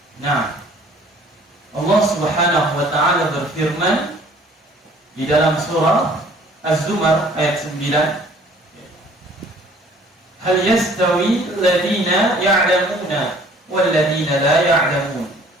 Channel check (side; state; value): both; normal; correlation 0.54